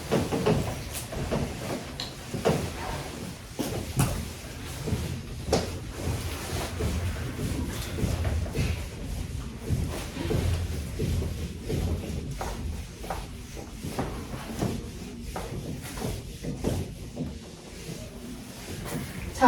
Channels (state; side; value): identical; both; correlation 1.00